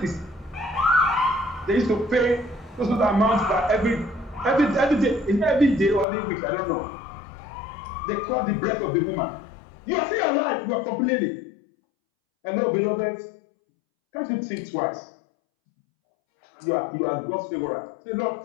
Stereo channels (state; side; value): drops out; right; at 6.1 s